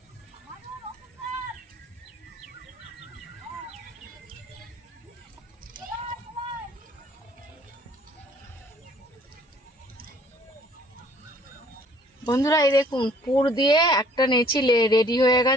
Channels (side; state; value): both; normal; correlation 0.57